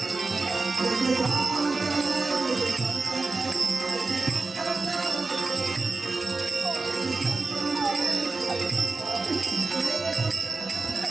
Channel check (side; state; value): left; quieter; 3.7 dB